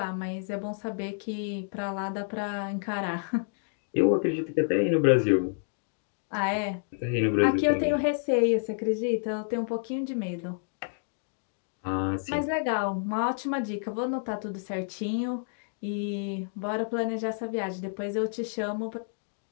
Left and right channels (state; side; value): silent; right; digital silence